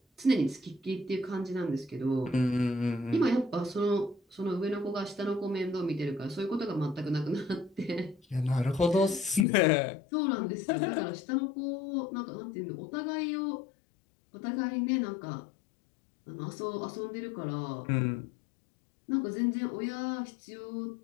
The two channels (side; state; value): right; drops out; at 9.5 s